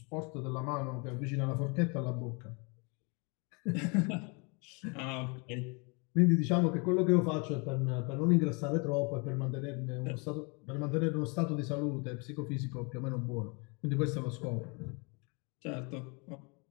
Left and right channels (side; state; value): right; quieter; 32.2 dB